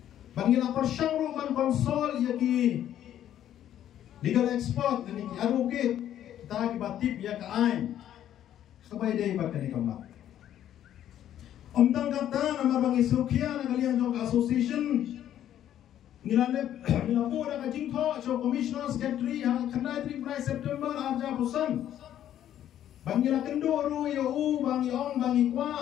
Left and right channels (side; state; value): right; quieter; 11.2 dB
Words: Bangila persyangkan konsol iya ki legal expert kena ki advocate kita ki batip iya ke ain. Sabay day ba kani kamak. Omtang kata nama bang Isukya na kalian jong association ngilane po na kajingko so commissioner secretary hang kanai 3 September arja pusan. Bangila kendo ru yo bang yong bang